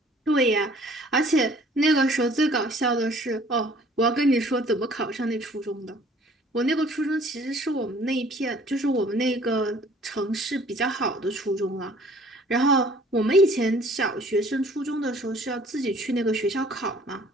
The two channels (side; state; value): both; normal; correlation 0.55